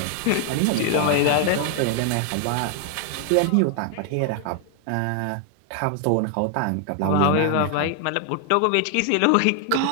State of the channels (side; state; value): both; different; correlation 0.00